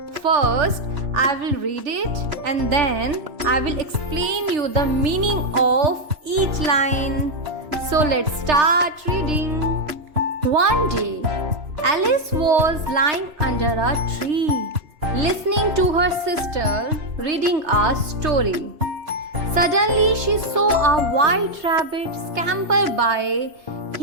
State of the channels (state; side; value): late; left; 3.3 ms